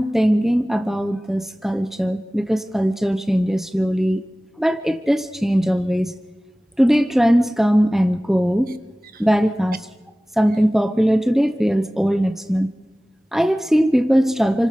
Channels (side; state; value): both; normal; correlation 0.98